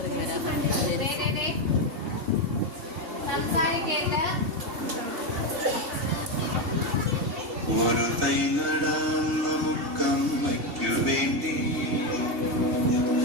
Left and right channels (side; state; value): left; late; 2.7 ms